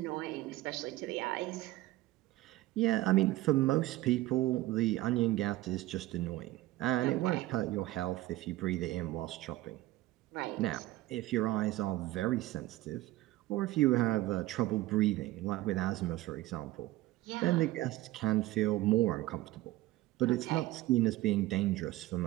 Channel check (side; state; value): left; quieter; 17.0 dB